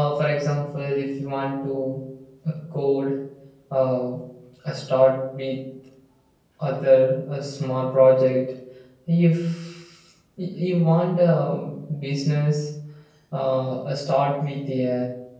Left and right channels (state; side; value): identical; both; correlation 1.00